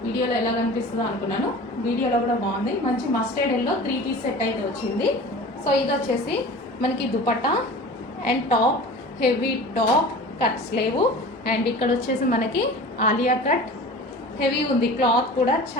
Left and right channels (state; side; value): normal; both; correlation 0.39